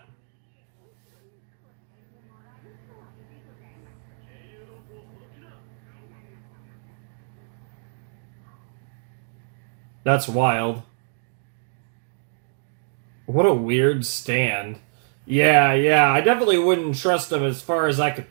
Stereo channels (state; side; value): silent; left; digital silence